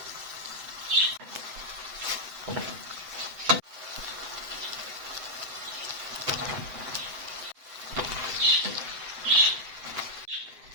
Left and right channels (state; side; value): late; left; 7.9 ms